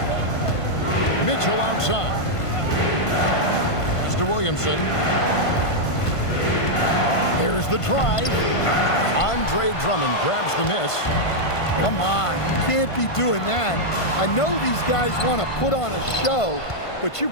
Mitchell outside. Pass to Williamson. There's the drive. Andre Drummond grabs the miss. Come on, you can't be doing that. I know these guys want to put on a show, but you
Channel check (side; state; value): right; late; 1.5 ms